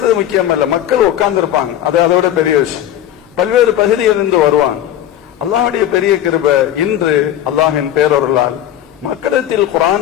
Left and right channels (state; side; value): quieter; right; 11.5 dB